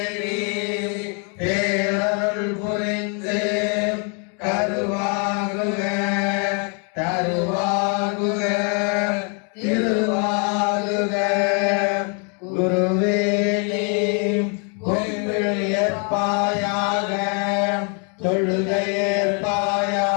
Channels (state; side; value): quieter; right; 38.0 dB